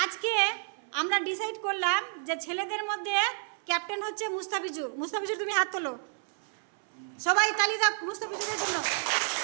আজকে আমরা ডিসাইড করলাম যে ছেলেদের মধ্যে ক্যাপ্টেন হচ্ছে মুস্তাফিজুর। মুস্তাফিজুর তুমি হাত তোলো, সবাই তালি দাও মুস্তাফিজুরের জন্য।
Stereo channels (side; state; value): left; silent; 58 dB below the other